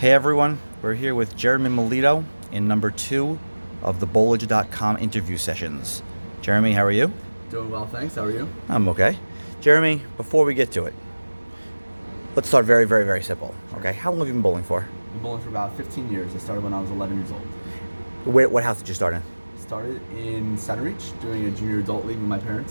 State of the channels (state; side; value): inverted; both; correlation -1.00